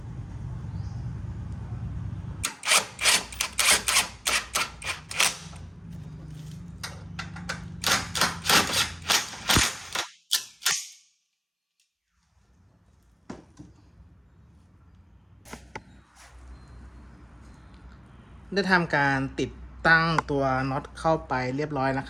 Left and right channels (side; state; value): both; identical; correlation 1.00